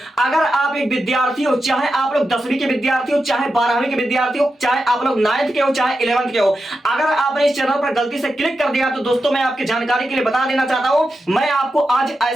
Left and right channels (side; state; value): both; normal; correlation 0.89